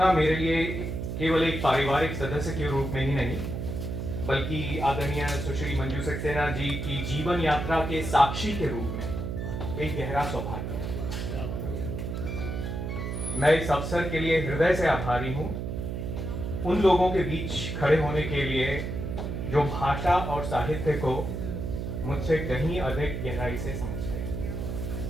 मेरे लिए केवल एक पारिवारिक सदस्य के रूप में ही नहीं, बल्कि आदरणीय सुश्री मंजू सक्सेना जी की जीवन यात्रा के साक्षी के रूप में एक गहरा सौभाग्य है। मैं इस अवसर के लिए हृदय से आभारी हूं उन लोगों के बीच खड़े होने के लिए जो भाषा और साहित्य को मुझसे कहीं अधिक गहराई से समझते हैं।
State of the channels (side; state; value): right; noise; hum, 4 dB below the sound